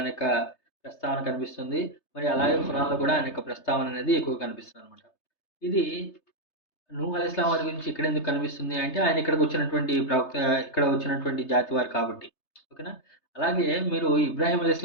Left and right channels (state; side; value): late; right; 3.3 ms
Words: యొక్క ప్రస్తావన కనిపిస్తుంది. మరి అలాగే ఖురాన్‌లో కూడా ఆయన యొక్క ప్రస్తావన అనేది ఎక్కువ కనిపిస్తుందనమాట. ఇది నూహ్ అలైహిస్సలాం వారి గురించి ఇక్కడెందుకు కనిపిస్తుంది అంటే, ఆయన ఇక్కడికి వచ్చినటువంటి ప్రవక్త, ఇక్కడ వచ్చినటువంటి జాతి వారు కాబట్టి. ఓకేనా? అలాగే మీరు ఇబ్రాహీం